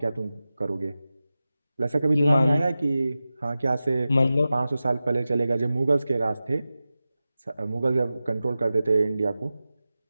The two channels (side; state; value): both; inverted; correlation -0.94